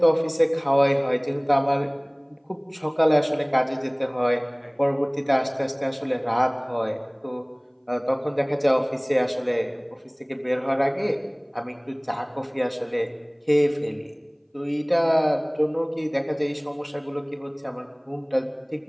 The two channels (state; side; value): identical; both; correlation 1.00